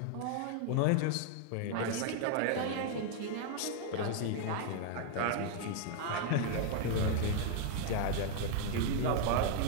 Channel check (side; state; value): both; different; correlation 0.00